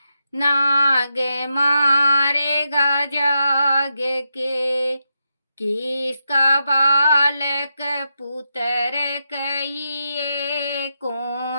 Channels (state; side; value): inverted; both; correlation -0.85